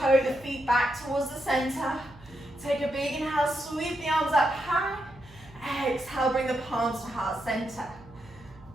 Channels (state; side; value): noise; right; hum, 22 dB below the sound